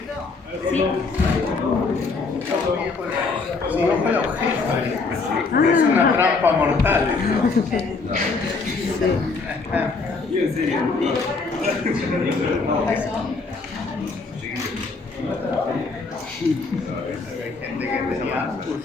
Es una trampa mortal.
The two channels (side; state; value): right; quieter; 4.2 dB